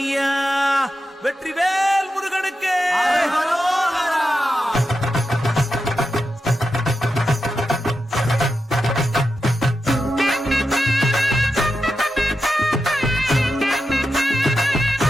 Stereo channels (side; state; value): both; normal; correlation 0.89